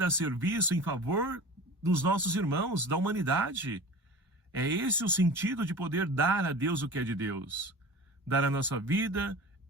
a serviço em favor dos nossos irmãos, da humanidade. É esse o sentido de poder dar a Deus o que é de Deus. Dar a nossa vida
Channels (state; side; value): normal; both; correlation 0.36